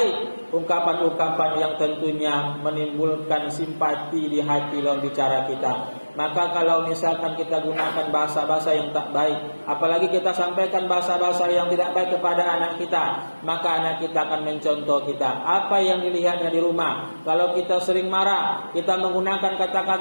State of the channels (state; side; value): inverted; both; correlation -1.00